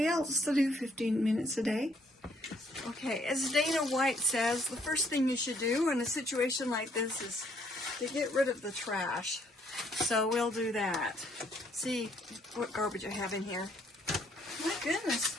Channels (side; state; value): both; normal; correlation 0.67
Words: else to do 15 minutes a day. Okay, as Dana White says, the first thing you should do in a situation like this is to get rid of the trash. So we'll do that. See what garbage I have in here. My goodness,